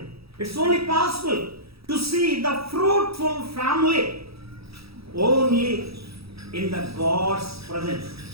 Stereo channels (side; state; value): left; late; 0.77 ms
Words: It's only possible to see the fruitful family only in the God's presence